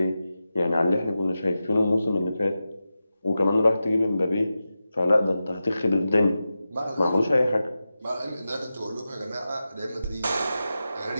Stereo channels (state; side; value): inverted; both; correlation -0.92